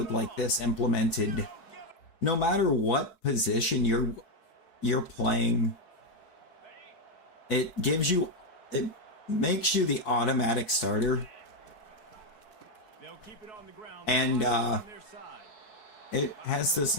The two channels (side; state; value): right; late; 4.6 ms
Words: like this implemented, no matter what position you're playing, it makes you the automatic starter, They'll keep it on the ground. and On their side. it has this